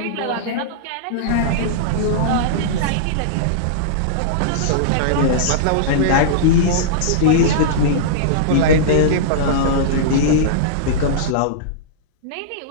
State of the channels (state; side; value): different; both; correlation -0.03